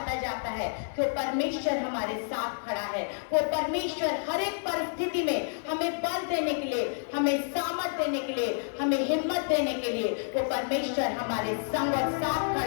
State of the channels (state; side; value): silent; right; 58 dB below the other